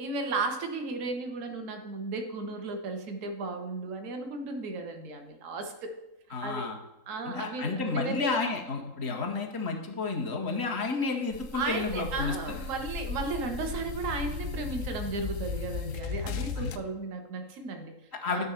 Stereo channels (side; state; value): left; late; 3.8 ms